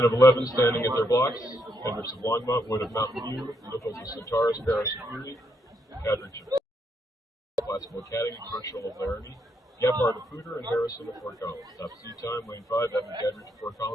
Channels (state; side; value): normal; both; correlation 0.77